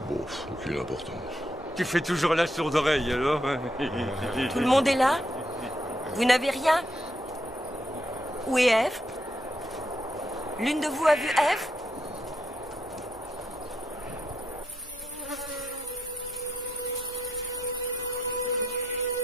Bon, aucune importance. Tu fais toujours la sourde oreille, alors? Tout le monde est là? Vous n'avez rien? Où est Ève? L'une de vous a vu Ève?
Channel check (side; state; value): both; normal; correlation 0.79